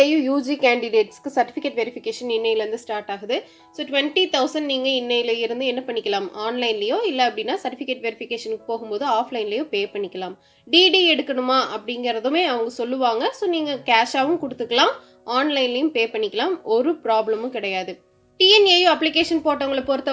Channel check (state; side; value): identical; both; correlation 1.00